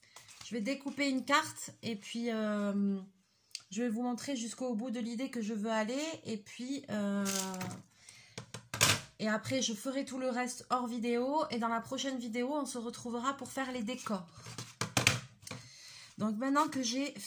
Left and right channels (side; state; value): both; identical; correlation 1.00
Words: vais découper une carte et puis je vais vous montrer jusqu'au bout de l'idée que je veux aller. Et après, je ferai tout le reste hors vidéo. Et dans la prochaine vidéo, on se retrouvera pour faire les décors. Donc maintenant que j'ai